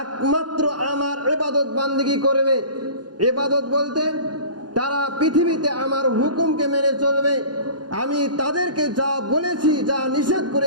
একমাত্র আমার ইবাদত বান্দেগী করবে। ইবাদত বলতে তারা পৃথিবীতে আমার হুকুমকে মেনে চলবে। আমি তাদেরকে যা বলেছি, যা নিষেধ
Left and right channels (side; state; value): left; late; 0.70 ms